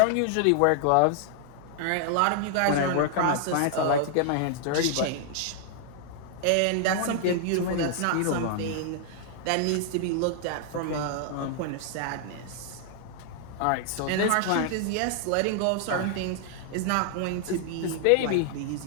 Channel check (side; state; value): both; different; correlation 0.00